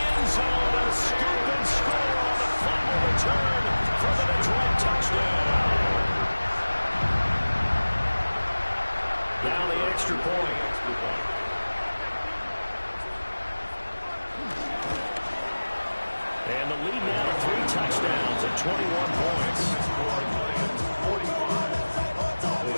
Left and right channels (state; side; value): inverted; both; correlation -1.00